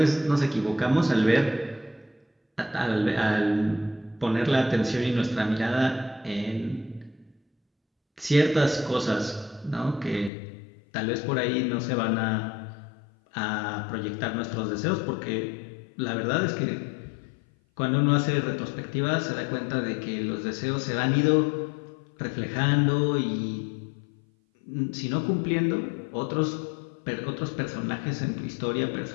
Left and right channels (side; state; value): right; drops out; at 10.3 s